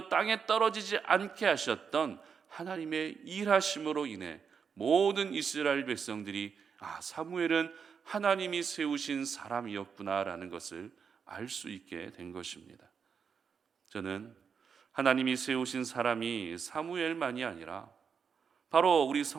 땅에 떨어지지 않게 하셨던 하나님의 일하심으로 인해 모든 이스라엘 백성들이 사무엘은 하나님이 세우신 사람이었구나라는 것을 알 수 있게 된 것입니다. 저는 하나님이 세우신 사람이 사무엘만이 아니라 바로 우리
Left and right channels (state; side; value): quieter; left; 6.4 dB